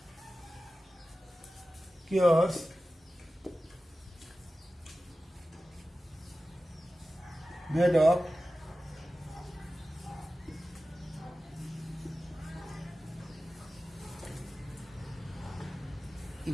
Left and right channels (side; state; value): both; normal; correlation 0.95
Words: cures made of